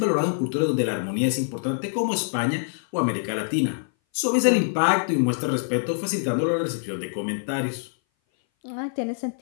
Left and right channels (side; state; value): right; silent; 58 dB below the other